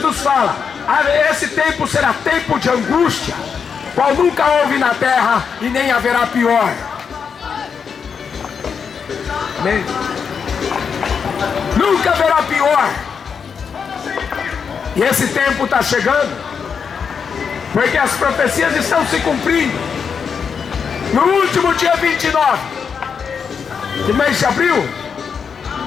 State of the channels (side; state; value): right; quieter; 6.4 dB